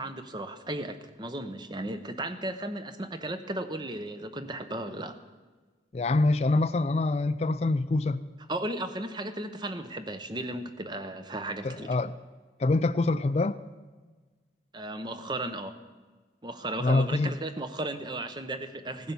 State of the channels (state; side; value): normal; both; correlation 0.68